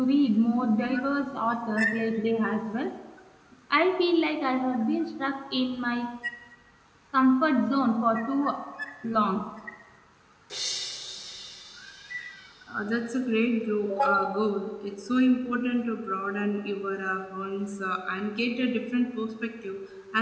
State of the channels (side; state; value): both; identical; correlation 1.00